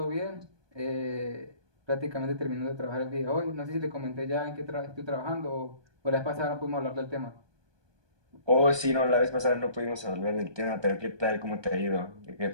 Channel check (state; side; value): late; left; 1.2 ms